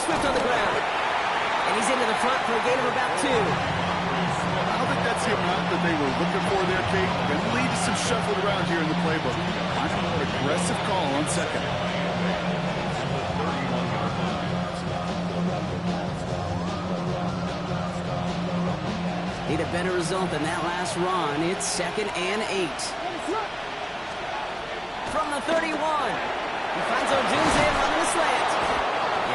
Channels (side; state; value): both; identical; correlation 1.00